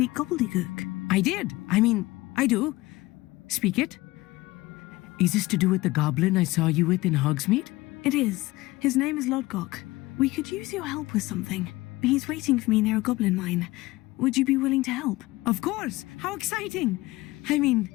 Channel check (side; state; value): right; quieter; 19.8 dB